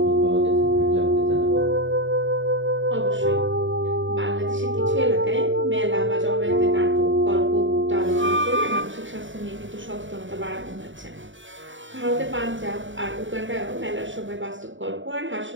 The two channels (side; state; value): left; late; 0.55 ms